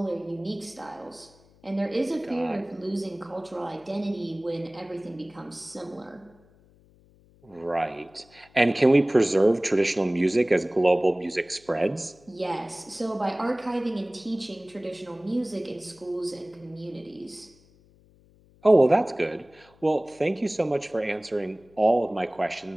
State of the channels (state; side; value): noise; left; hum, 29 dB below the sound